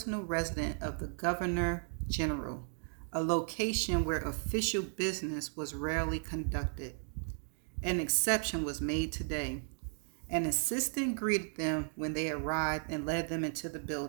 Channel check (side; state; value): left; silent; 54 dB below the other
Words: residence of the Governor General, a location where official business was rarely conducted. An exception was made today. An assistant greeted them when they arrived and led them into the